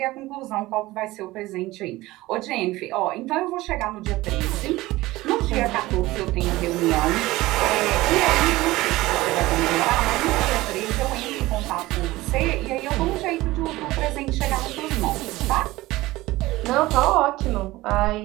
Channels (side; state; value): left; quieter; 18.6 dB